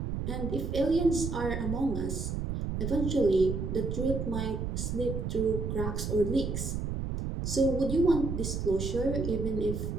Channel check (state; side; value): noise; right; rumble, 3 dB below the sound